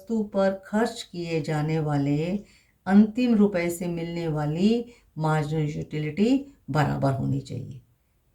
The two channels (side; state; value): both; identical; correlation 1.00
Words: पर खर्च किए जाने वाले अंतिम रुपए से मिलने वाली मार्जिनल यूटिलिटी बराबर होनी चाहिए।